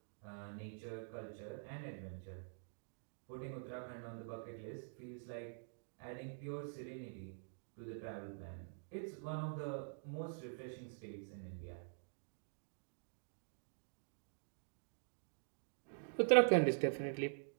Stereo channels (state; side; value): silent; left; digital silence